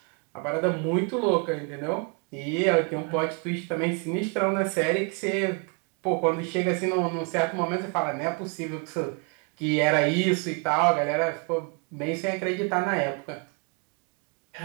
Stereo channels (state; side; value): quieter; left; 34.5 dB